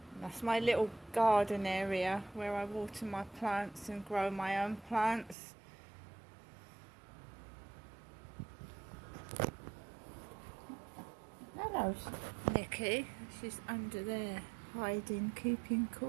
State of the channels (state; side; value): drops out; left; at 5.4 s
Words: That's my little garden area where I water my plants and grow my own plants. Hello, Nikki. She's under there, hiding, keeping